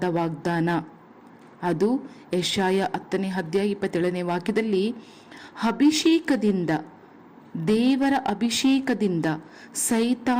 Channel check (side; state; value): both; identical; correlation 1.00